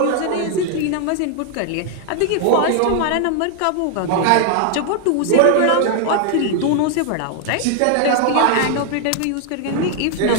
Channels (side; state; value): both; different; correlation 0.00